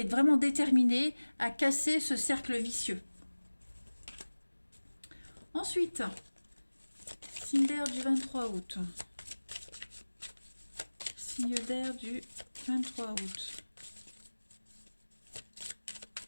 est vraiment déterminé à casser ce cercle vicieux. Ensuite, signe d'air du 23 août. Signe d'air du 23 août.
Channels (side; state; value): both; inverted; correlation -1.00